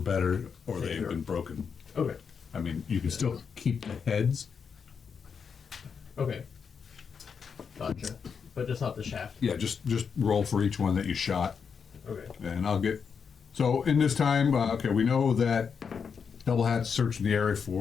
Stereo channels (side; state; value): right; quieter; 6.3 dB